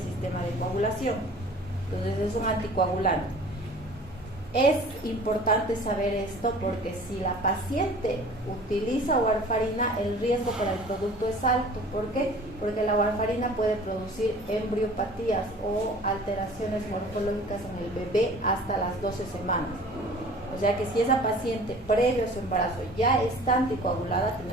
sistema de coagulación. Entonces es un anticoagulante. Es importante saber esto porque si la paciente utiliza warfarina, el riesgo para el producto es alto. ¿Por qué? Porque la warfarina puede producir embriopatías o alteraciones morfológicas en el bebé hasta las 12 semanas. O sea que si esa paciente previo a su embarazo ya está anticoagulada,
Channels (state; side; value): normal; both; correlation 0.46